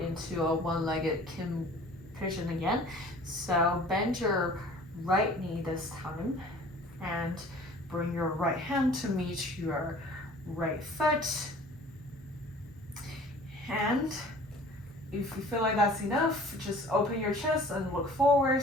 into a one-legged pigeon again. So bend your right knee this time and bring your right hand to meet your right foot. And if you feel like that's enough, just open your chest and look forward.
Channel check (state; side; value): normal; both; correlation 0.48